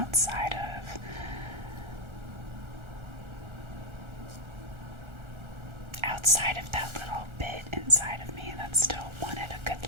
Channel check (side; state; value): left; late; 1.4 ms